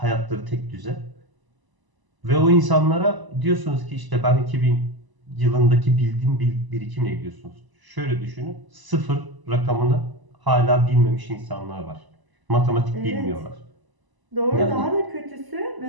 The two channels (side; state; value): left; late; 1.0 ms